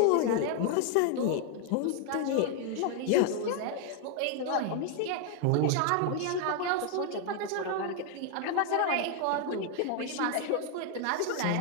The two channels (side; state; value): both; different; correlation 0.00